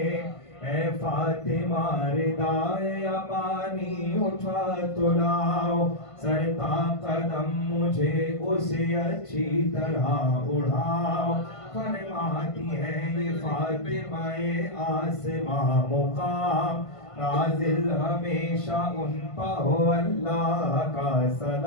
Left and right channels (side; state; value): right; late; 1.5 ms